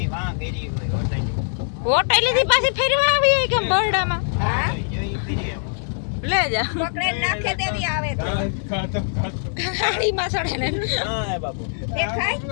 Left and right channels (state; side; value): silent; right; 63 dB below the other